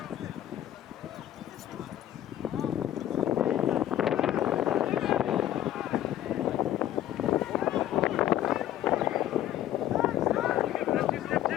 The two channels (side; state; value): right; quieter; 12.3 dB